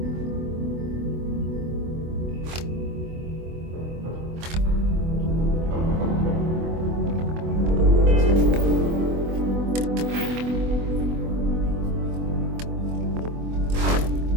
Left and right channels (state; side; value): late; left; 24 ms